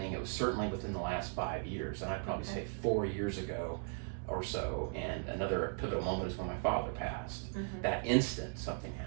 it was certainly within the last 5 years, and I'd probably say 4 years ago or so. And another pivotal moment is when my father passed. That instant, something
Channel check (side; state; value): left; silent; 53 dB below the other